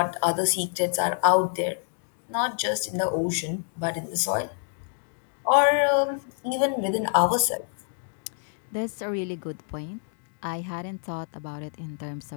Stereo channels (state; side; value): silent; right; digital silence